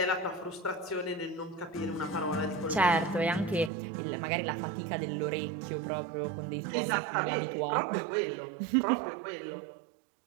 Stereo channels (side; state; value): left; drops out; at 3.7 s